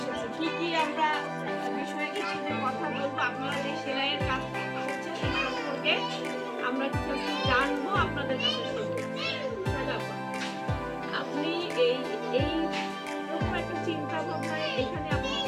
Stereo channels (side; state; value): both; identical; correlation 1.00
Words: কি আমরা বিষয়ে কিছু কথা বলবো, আপনারা যে সেলাইয়ের কাজ করছেন সেই সম্পর্কে আমরা কিছু জানবো, আপনাদের কাছে শুনবো। আপনি এই রকম একটা চিন্তা ভাবনায় এখানে আপনি